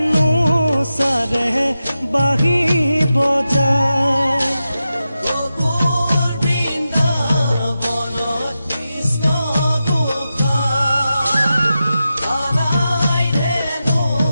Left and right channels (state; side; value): inverted; both; correlation -0.91